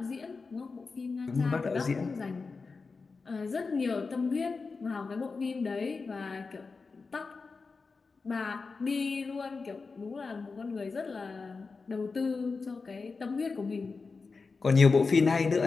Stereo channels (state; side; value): quieter; right; 4.4 dB